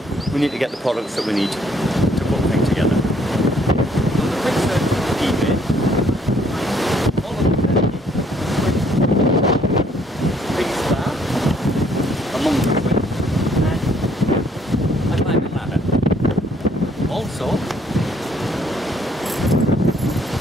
we need to get the products that we need to put the thing together. So the quick search on eBay, all of them, big star, among the swings, and a climbing ladder. Also,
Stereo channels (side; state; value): both; normal; correlation 0.65